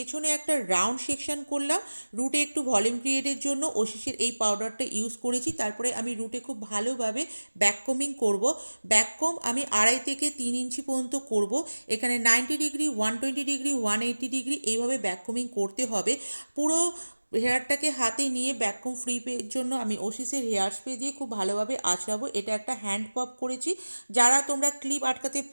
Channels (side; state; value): both; inverted; correlation -1.00